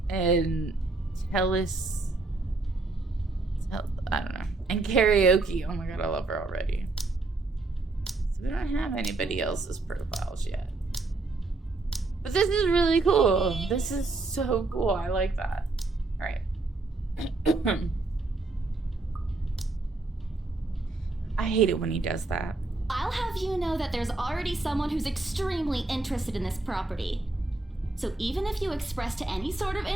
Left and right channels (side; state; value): left; quieter; 3.3 dB